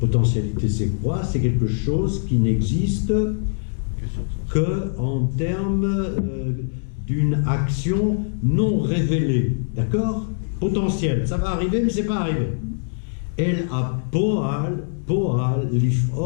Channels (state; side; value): silent; right; 64 dB below the other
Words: c'est quoi? C'est quelque chose qui n'existe que en termes d'une action non révélée. D'accord? Potentiel. Ça va arriver, mais c'est pas arrivé. El a poal,